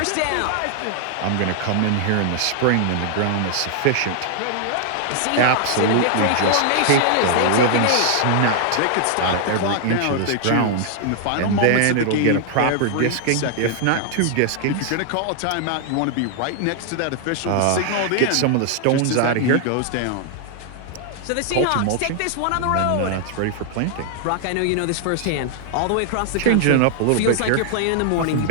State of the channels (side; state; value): both; different; correlation 0.00